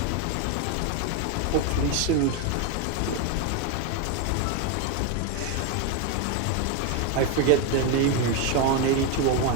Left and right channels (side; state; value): both; different; correlation 0.02